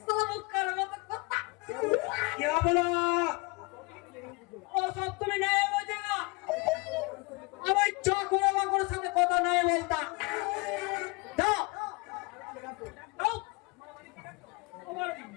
সালা মুখার মতো কথা क्या बोला? ও সব তুমি নাই বোঝেনা আমার চকরে বাকরের সাথে কথা নাই বলতা দাও দাও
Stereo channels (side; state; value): right; quieter; 27.7 dB